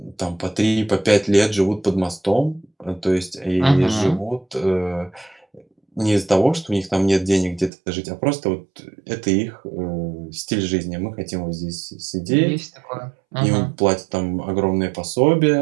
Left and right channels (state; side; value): drops out; left; at 7.7 s